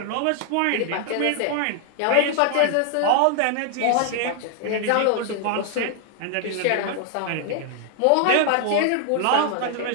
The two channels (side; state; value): both; different; correlation 0.00